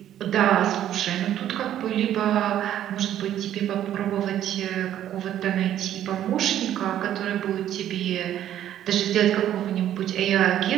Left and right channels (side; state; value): left; quieter; 11.4 dB